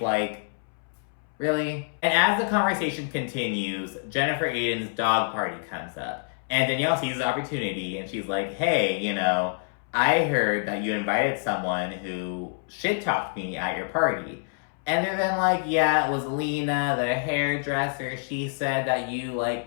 really? And as the conversation continues, Jennifer Aiden's dog party comes up. And Danielle sees the opportunity, and she's like, hey, I heard that you invited someone who shit-talked me at your party. And they're then like, yeah, it was Lena, the hairdresser. She said that you,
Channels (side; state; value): right; silent; 60 dB below the other